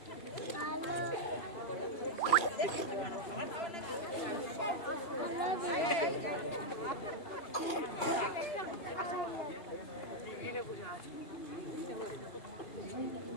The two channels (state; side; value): late; right; 2.5 ms